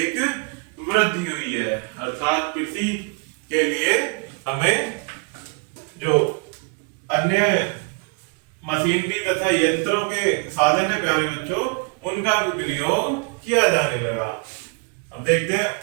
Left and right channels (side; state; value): left; quieter; 34.3 dB